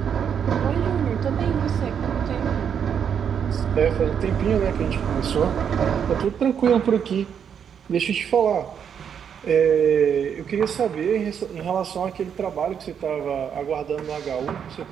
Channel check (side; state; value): left; quieter; 7.8 dB